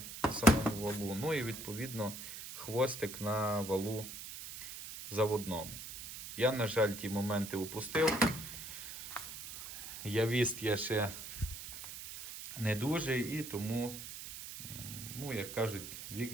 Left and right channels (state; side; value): noise; right; hiss, 10 dB below the sound